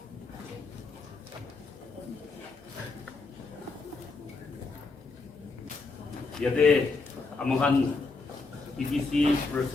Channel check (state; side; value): quieter; right; 3.9 dB